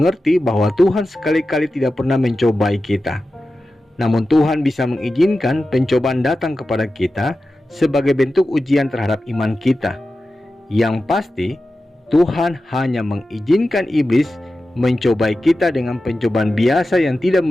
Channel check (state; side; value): normal; both; correlation 0.93